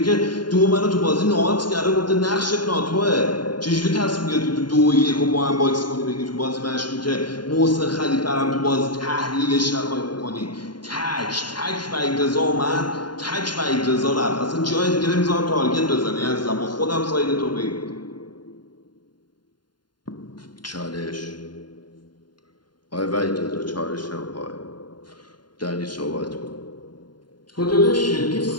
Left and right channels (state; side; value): late; right; 0.71 ms